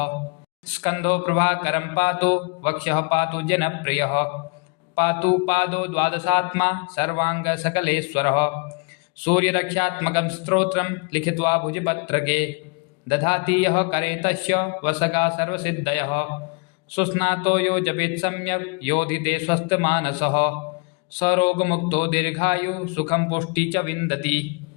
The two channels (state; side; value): quieter; right; 33.4 dB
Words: स्कन्धो प्रभाकरं पातु वक्षः पातु जनप्रियः पातु पादो द्वादशात्मा सर्वाङ्गसकलेश्वरः सूर्यरक्षात्मकं स्तोत्रं लिखित्वा भुजपत्रके दधाति यः करे तस्य वसगा सर्वसिद्धयः सुस्नातो यो जपेत् सम्यक् योधिते स्वस्थमानसः सरोगमुक्तो दीर्घायु सुखं पुष्टि च विन्दति।